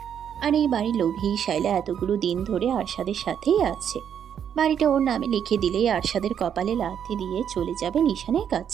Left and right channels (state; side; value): quieter; left; 8.6 dB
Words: আর এই বাড়ির লোভেই শায়লা এতগুলো দিন ধরে আরশাদের সাথেই আছে। বাড়িটা ওর নামে লিখে দিলেই আরশাদের কপালে লাথি দিয়ে চলে যাবে নিশানের